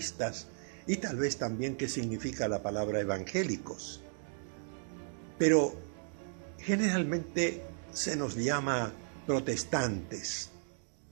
y tal vez también qué significa la palabra evangélicos. Pero generalmente se nos llama protestantes.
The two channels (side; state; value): left; silent; digital silence